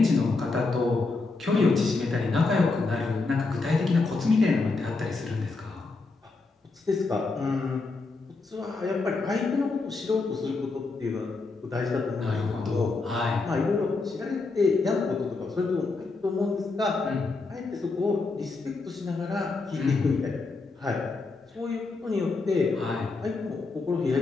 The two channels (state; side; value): quieter; right; 3.8 dB